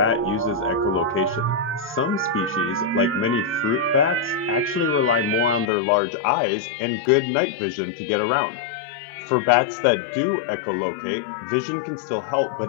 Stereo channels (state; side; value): drops out; right; at 5.7 s